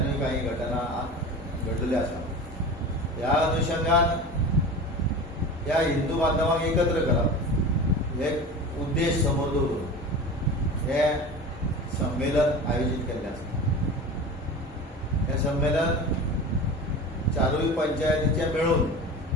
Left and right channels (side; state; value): both; normal; correlation 0.32